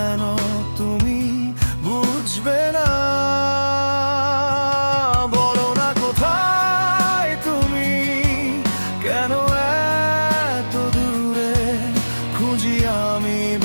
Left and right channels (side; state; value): both; inverted; correlation -1.00